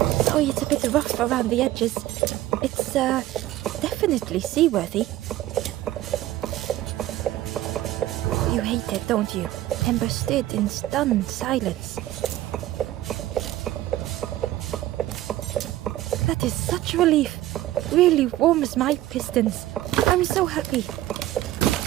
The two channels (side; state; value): left; quieter; 14.9 dB